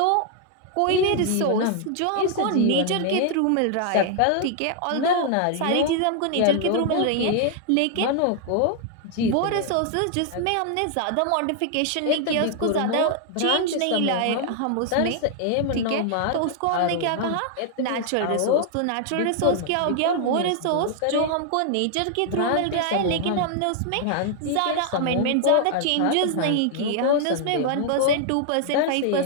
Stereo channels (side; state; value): both; different; correlation 0.00